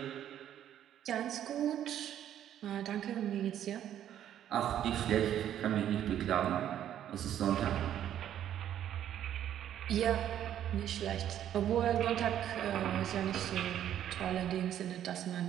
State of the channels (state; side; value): quieter; left; 10.8 dB